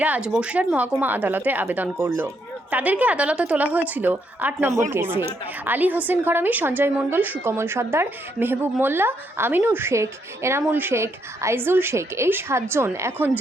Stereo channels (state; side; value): normal; both; correlation 0.76